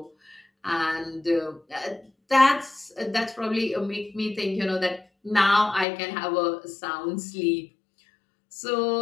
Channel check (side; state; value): right; drops out; at 5.9 s